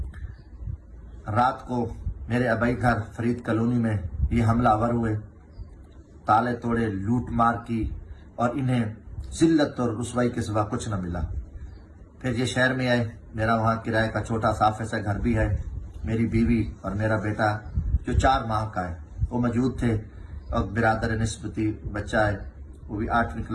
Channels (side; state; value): both; identical; correlation 1.00